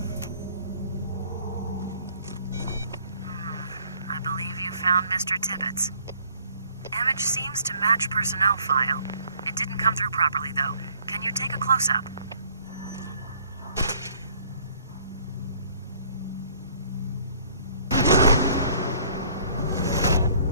Mr. Tibbetts. Image seems to match personnel file. It didn't come through properly, though. Can you take a close-up?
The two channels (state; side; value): inverted; both; correlation -0.60